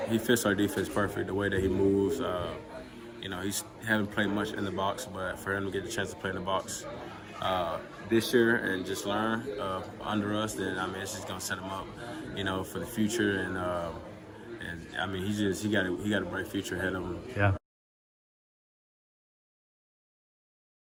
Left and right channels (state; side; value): identical; both; correlation 1.00